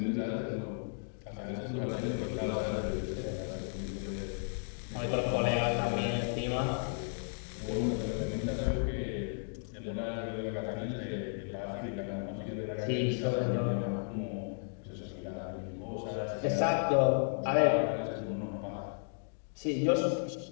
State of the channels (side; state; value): right; silent; digital silence